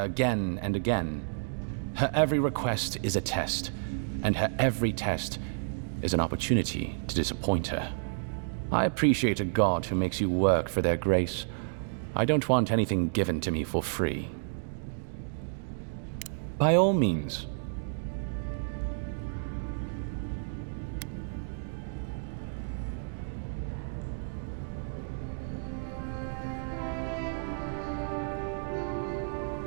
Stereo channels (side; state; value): left; silent; digital silence